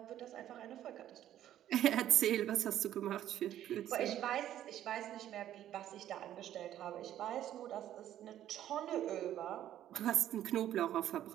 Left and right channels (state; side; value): quieter; left; 11.8 dB